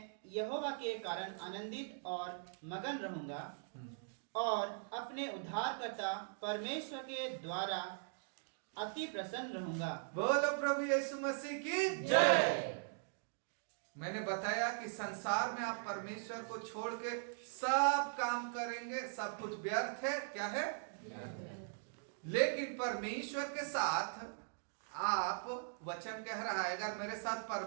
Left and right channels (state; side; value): silent; left; digital silence